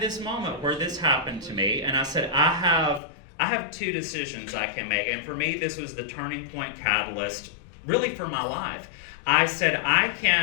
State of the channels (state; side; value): drops out; right; at 3.0 s